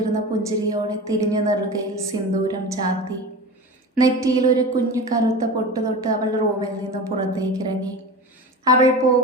പുഞ്ചിരിയോടെ തിരിഞ്ഞു നെറുകയിൽ സിന്ദൂരം ചാത്തി. നെറ്റിയിൽ ഒരു കുഞ്ഞു കറുത്ത പൊട്ട് തൊട്ട് അവൾ റൂമിൽ നിന്ന് പുറത്തേക്കിറങ്ങി. അവൾ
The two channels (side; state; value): both; normal; correlation 0.30